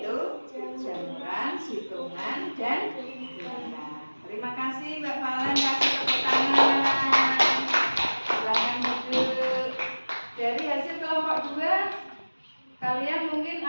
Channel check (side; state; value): both; inverted; correlation -1.00